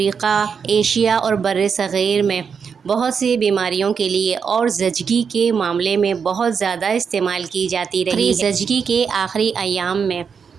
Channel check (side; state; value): left; quieter; 6.3 dB